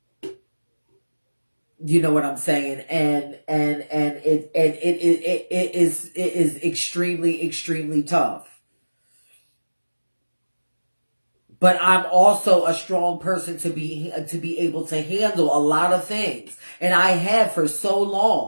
You know what I'm saying? And it is extremely, extremely tough. But I'm also a strong person to be able to handle a lot of things. And I have for so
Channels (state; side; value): inverted; both; correlation -1.00